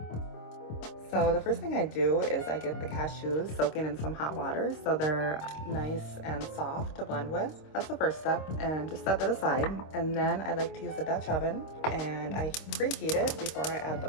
So the first thing I do is I get the cashews soaking in some hot water so they're nice and soft to blend with. That's the first step, and just set that aside. And then I like to use a Dutch oven, and I preheat it before I add the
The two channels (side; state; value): right; late; 26 ms